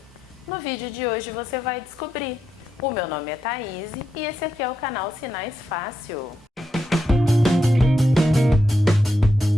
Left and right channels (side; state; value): both; normal; correlation 0.83